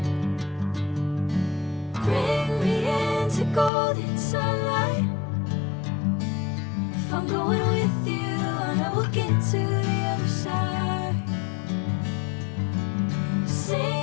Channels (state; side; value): drops out; right; at 3.7 s